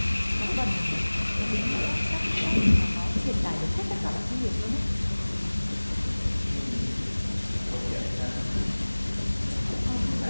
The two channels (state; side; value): inverted; both; correlation -1.00